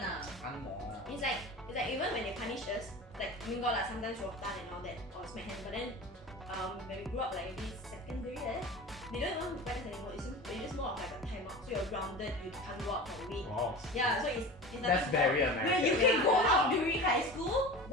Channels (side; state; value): both; normal; correlation 0.33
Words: now. Angmoh. it's like even when they punish us, like got like sometimes we'll tan and all that or smack hands, but then when we grew up like maybe secondary they don't even practice anymore. It's just more of like a timeout. So you're grounded, you can't go out for a week. Wow. Yeah, so it's That's very Where American. you can go out during high school,